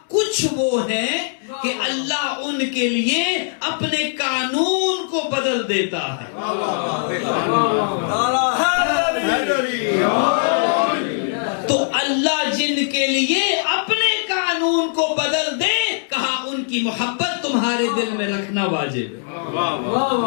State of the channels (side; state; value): right; silent; 65 dB below the other